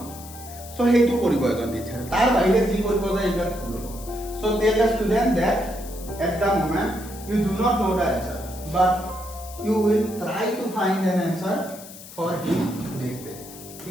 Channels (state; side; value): noise; left; hiss, 16 dB below the sound